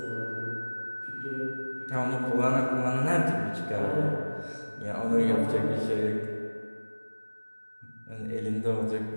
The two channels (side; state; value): both; inverted; correlation -1.00